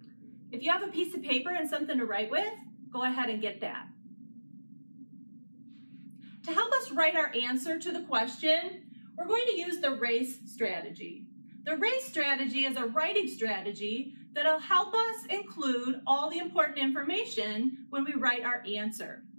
If you have a piece of paper and something to write with, go ahead and get that. To help us write our answer to the question, we're going to use the R.A.C.E strategy. The R.A.C.E strategy is a writing strategy that'll help us include all the important information when we write our answer.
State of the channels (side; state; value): both; inverted; correlation -1.00